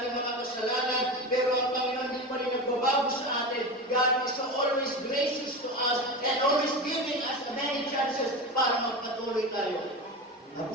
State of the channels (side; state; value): both; normal; correlation 0.24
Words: mga kasalanan, pero ang Panginoon din pa rin nagbabago sa atin. God is always gracious to us and always giving us many chances para magpatuloy tayo.